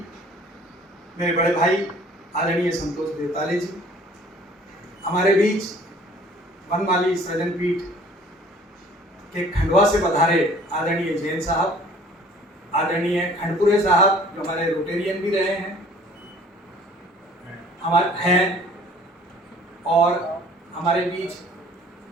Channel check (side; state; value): both; normal; correlation 0.52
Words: मेरे बड़े भाई आदरणीय संतोष बेताले जी, हमारे बीच वनमाली सृजन पीठ के खंडवा से पधारे आदरणीय जैन साहब, आदरणीय खंडपुरे साहब जो हमारे रोटेरियन भी रहे हैं हमारे हैं, और हमारे बीच